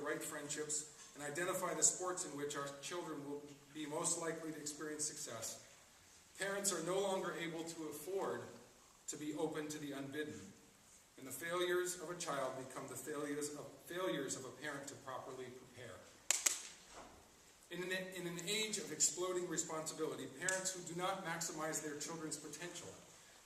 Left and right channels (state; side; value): identical; both; correlation 1.00